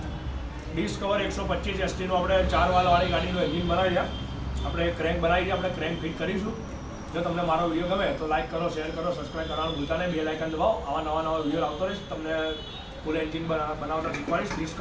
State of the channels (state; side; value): identical; both; correlation 1.00